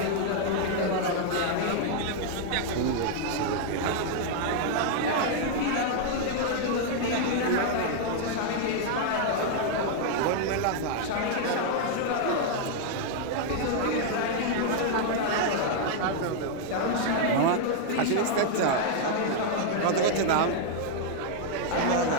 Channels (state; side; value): different; both; correlation 0.00